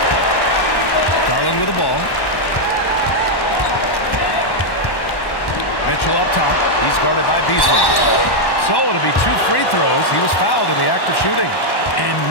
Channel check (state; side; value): late; right; 1.1 ms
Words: Garland with the ball. Mitchell up top. He's guarded by Beasley. So it'll be 2 free throws. He was fouled in the act of shooting. And